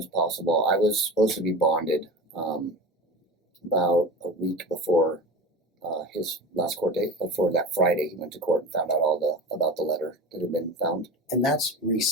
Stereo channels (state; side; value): normal; both; correlation 0.30